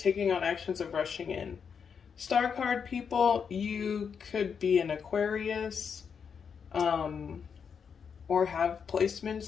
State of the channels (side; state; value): right; quieter; 6.6 dB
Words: on actions of rushing in. Star card people, you could be an Aquarius, or have